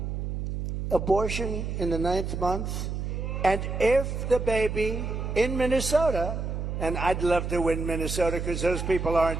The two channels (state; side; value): noise; right; hum, 4 dB below the sound